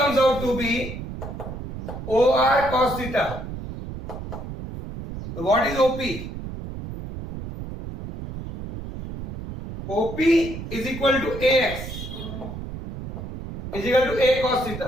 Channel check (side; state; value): right; noise; rumble, 9 dB below the sound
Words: out to be OR cos theta. So what is OP? OP is equal to AX is equal to A cos